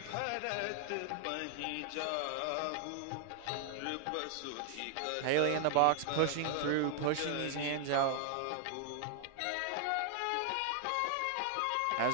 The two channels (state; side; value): different; both; correlation 0.00